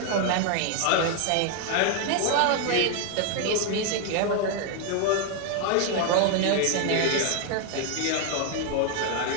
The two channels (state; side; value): different; both; correlation 0.01